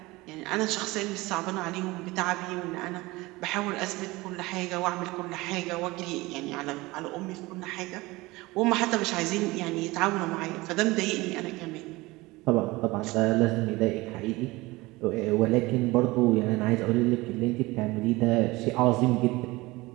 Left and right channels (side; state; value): left; quieter; 21.3 dB